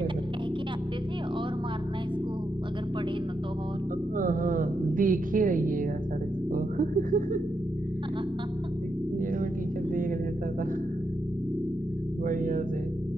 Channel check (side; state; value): both; normal; correlation 0.83